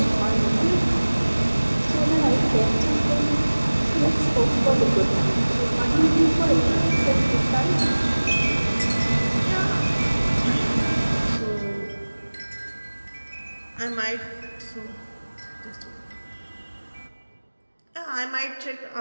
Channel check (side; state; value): both; inverted; correlation -1.00